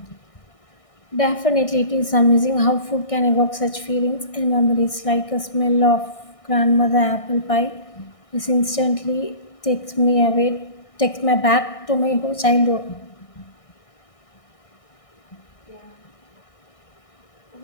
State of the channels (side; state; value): right; late; 1.6 ms